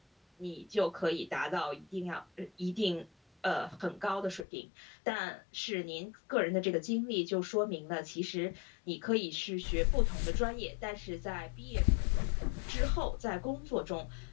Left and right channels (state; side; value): drops out; right; at 4.5 s